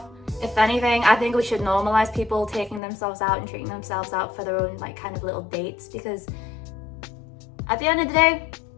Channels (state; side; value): drops out; right; at 2.8 s